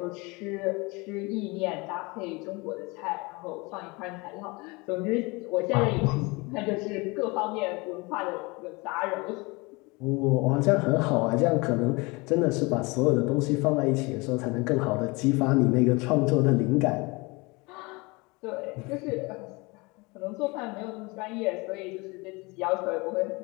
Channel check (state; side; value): quieter; right; 25.9 dB